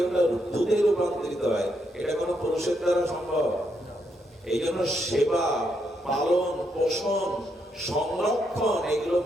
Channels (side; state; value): both; normal; correlation 0.78